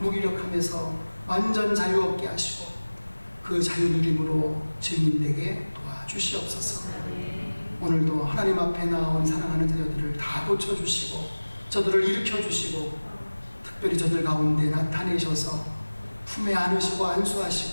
완전 자유 얻게 하시고 그 자유 누림으로 증인되게 도와주시옵소서. 오늘도 하나님 앞에 나온 사랑하는 자녀들을 다 고쳐주시고 저들을 일으켜주시고 특별히 저들 가운데 나타내셔서 품에 안으시고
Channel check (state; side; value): inverted; both; correlation -1.00